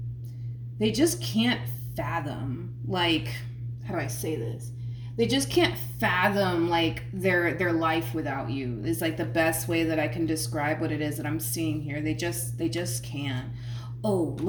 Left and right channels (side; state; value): both; identical; correlation 1.00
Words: they just can't fathom, like, how do I say this? They just can't fathom like their life without you. Is like the best way that I can describe what it is that I'm seeing here. They just can't. Oh,